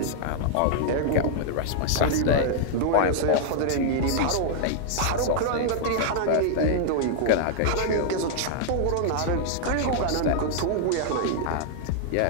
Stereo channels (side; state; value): both; different; correlation -0.01